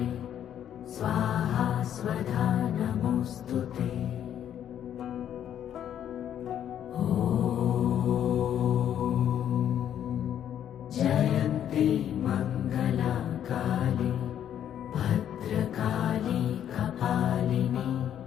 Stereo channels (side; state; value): right; quieter; 10.1 dB